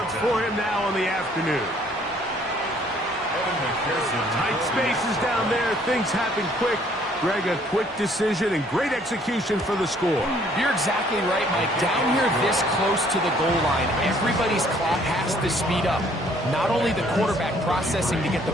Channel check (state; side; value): normal; both; correlation 0.61